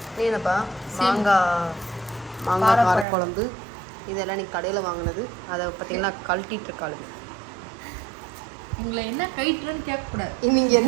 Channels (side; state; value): left; drops out; at 3.1 s